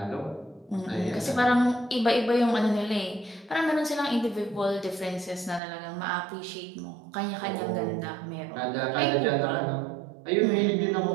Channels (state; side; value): drops out; left; at 5.6 s